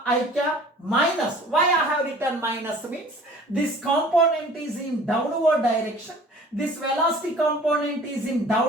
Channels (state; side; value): normal; both; correlation 0.48